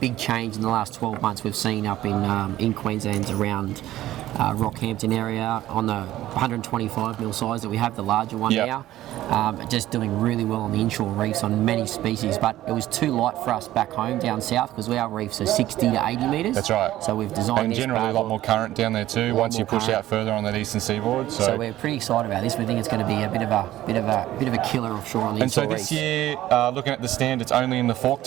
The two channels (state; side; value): quieter; left; 14.4 dB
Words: change in the last 12 months. We've seen up in Queensland around Rockhampton area on the 125 mil size that we have, the larger one now. Just doing really well on the inshore reefs on many species, but it was too light for us back home down south because our reefs are 60 to 80 metres. That's right. So we've designed and this generally a lot more current down there too once you push out further on that eastern seaboard. So we're pretty excited about this. We think it's going to be a bit of a killer offshore on the inshore reefs. And so this year, looking at the stand, it's only in the fork